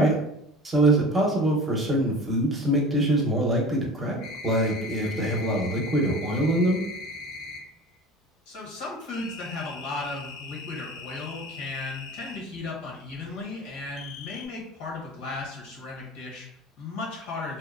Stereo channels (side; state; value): both; normal; correlation 0.38